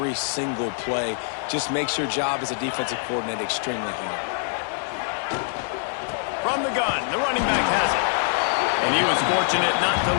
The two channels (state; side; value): silent; right; 62 dB below the other